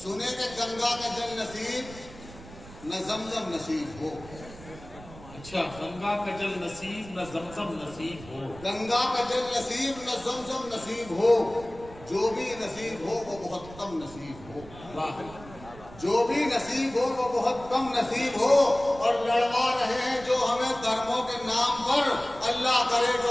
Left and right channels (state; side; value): noise; right; rumble, 17 dB below the sound